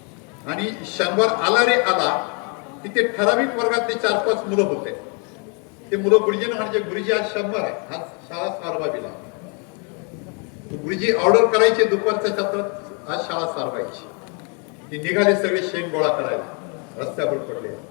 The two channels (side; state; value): right; quieter; 36.6 dB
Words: आणि शनिवार आला रे आला, तिथे ठराविक वर्गातले 4-5 मुलं होते. ते मुलं गुरुजींना म्हणजे, गुरुजी आज शनिवार आहे, आज शाळा सारवावी लागली. गुरुजी ऑर्डर करायचे दुपारच्या सत्रात, आज शाळा सारवायची. ती निघाले सगळे शेण गोळा करायला, रस्त्यावर पडले.